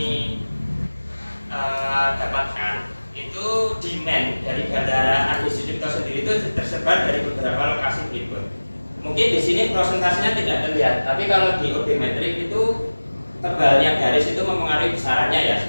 dapatkan itu demand dari bandara Adi Sucipto sendiri itu tersebar dari beberapa lokasi berikut. Mungkin di sini prosentasenya tidak terlihat, tapi kalau di odometrik itu tebalnya garis itu mempengaruhi besarannya ya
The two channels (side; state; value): both; inverted; correlation -1.00